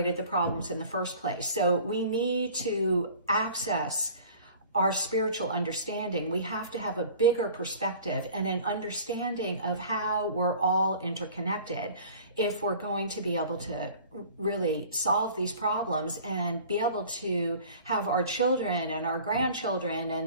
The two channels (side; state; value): both; inverted; correlation -0.46